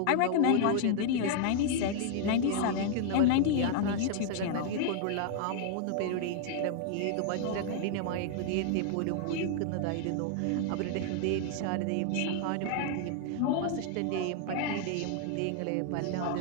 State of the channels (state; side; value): different; both; correlation 0.00